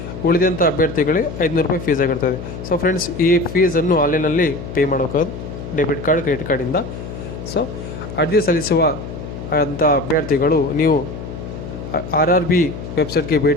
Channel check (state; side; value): noise; left; hum, 9 dB below the sound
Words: ಉಳಿದಂಥ ಅಭ್ಯರ್ಥಿಗಳಿಗೆ 500 ರೂಪಾಯಿ ಫೀಸ್ ಆಗಿರ್ತದೆ. ಸೊ ಫ್ರೆಂಡ್ಸ್, ಈ ಫೀಸನ್ನು ಆನ್ಲೈನಲ್ಲಿ ಪೇ ಮಾಡೋಕ್ಕಾಗೋದು ಡೆಬಿಟ್ ಕಾರ್ಡ್, ಕ್ರೆಡಿಟ್ ಕಾರ್ಡಿಂದ. ಸೊ ಅರ್ಜಿ ಸಲ್ಲಿಸುವ ಅಂಥ ಅಭ್ಯರ್ಥಿಗಳು ನೀವು RRB ವೆಬ್ಸೈಟ್ಗೆ